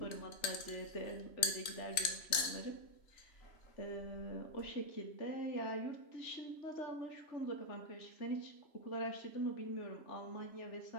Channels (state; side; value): late; right; 3.0 ms